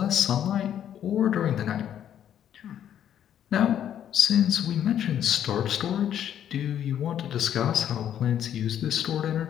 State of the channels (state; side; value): quieter; right; 10.1 dB